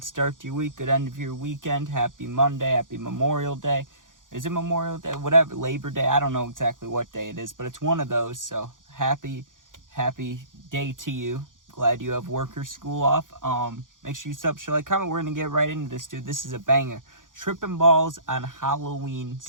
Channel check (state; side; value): late; left; 0.88 ms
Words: start to your week, good end of your weekend. Happy Monday, happy Memorial Day. Is it Memorial Day? Whatever, Labor Day. I don't know exactly what day it is, but it's one of those. So happy day to you. Glad you have work or school off. Make sure you sub, share, like, comment. We're gonna get right into this, dude. This is a banger. Tripping balls on Halloween